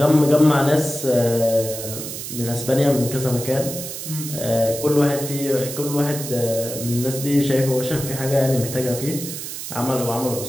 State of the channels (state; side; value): noise; right; hiss, 8 dB below the sound